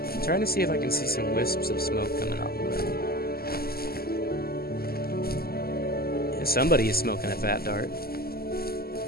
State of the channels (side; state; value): right; late; 0.45 ms